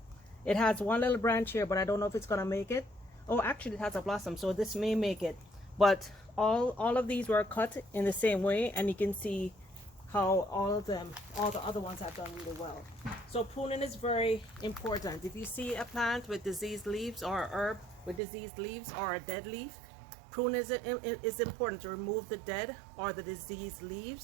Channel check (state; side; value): drops out; left; at 18.2 s